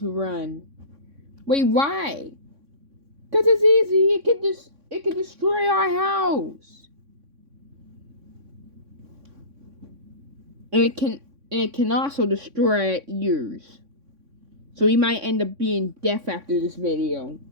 run. Wait, why? Cause it's easy. It can destroy our house. And it can also destroy our ears. So we might end up being deaf after this video.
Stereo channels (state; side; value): late; left; 3.6 ms